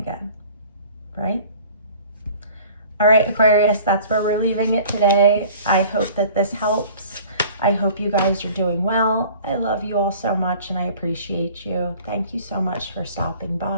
right? All right, Aquarius, that's where we're leaving it today. I hope that this helps. I hope you guys are doing well. I love you all so much and I appreciate you. Thank you so much for stopping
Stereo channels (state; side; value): inverted; both; correlation -0.48